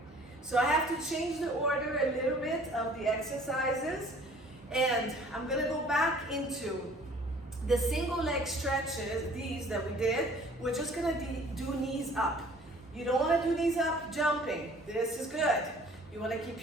So I have to change the order a little bit of the exercises, and I'm gonna go back into the single leg stretches, these that we did. We're just gonna do knees up. You don't wanna do knees up jumping. This is good. You wanna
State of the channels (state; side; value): normal; both; correlation 0.52